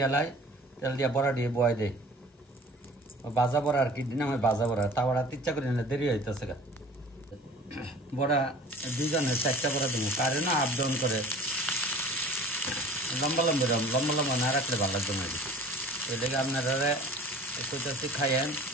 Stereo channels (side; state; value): both; normal; correlation 0.46